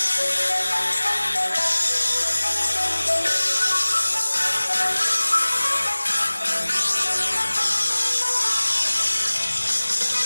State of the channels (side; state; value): both; inverted; correlation -1.00